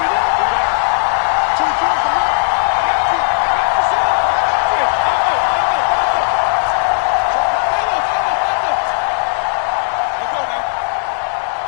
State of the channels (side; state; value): right; silent; digital silence